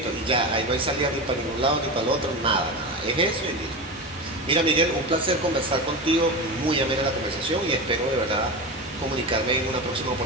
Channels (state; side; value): normal; both; correlation 0.23